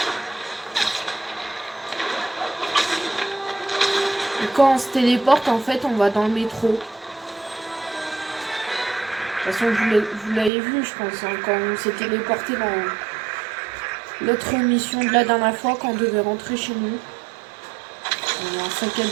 Et quand on se téléporte, en fait, on va dans le métro. De toute façon, vous l'avez vu, je pense, hein, quand on s'est téléporté dans l'autre mission de la dernière fois, quand on devait rentrer chez nous. On a un sac à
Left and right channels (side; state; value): left; drops out; at 10.5 s